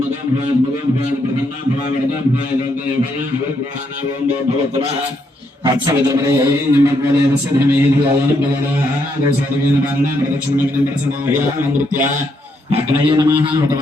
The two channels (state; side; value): normal; both; correlation 0.76